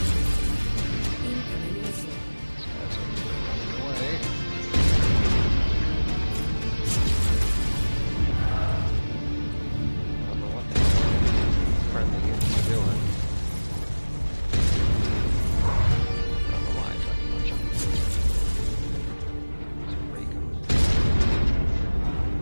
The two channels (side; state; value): both; inverted; correlation -1.00